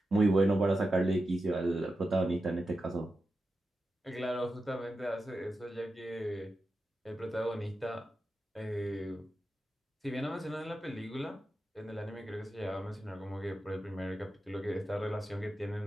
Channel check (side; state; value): both; normal; correlation 0.90